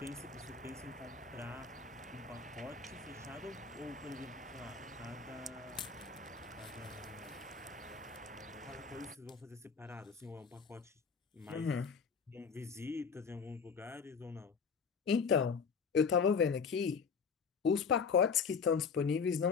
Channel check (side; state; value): right; quieter; 5.7 dB